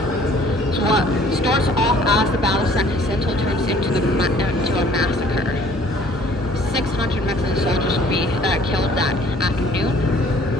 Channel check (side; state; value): both; normal; correlation 0.55